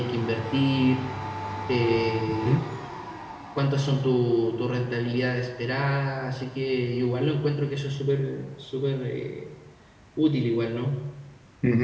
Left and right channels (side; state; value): both; identical; correlation 1.00